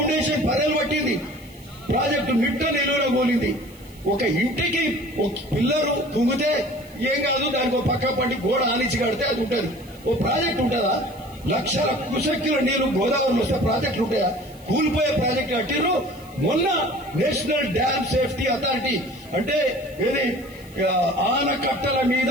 పదేలు పట్టింది, ప్రాజెక్టు మిట్ట నిలువలో కూలింది. ఒక ఇంటికి ఒక పిల్లరు తుంగితే ఏం కాదు, దానికి ఒక పక్క పట్టి గోడ ఆనిచి కడితే అది ఉంటుంది. ఓ ప్రాజెక్ట్ ఉంటుందా? లక్షల కుశక్తుల నీరు గోదావరిలో వస్తే ప్రాజెక్టులు ఉంటాయా? కూలిపోయే ప్రాజెక్టు కట్టిరు. మొన్న నేషనల్ డ్యామ్ సేఫ్టీ అథారిటీ అంటే ఏది ఆనకట్టల మీద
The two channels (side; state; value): right; noise; hiss, 25 dB below the sound